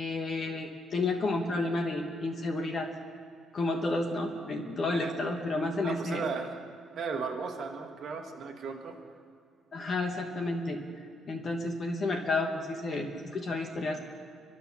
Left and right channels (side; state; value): both; normal; correlation 0.76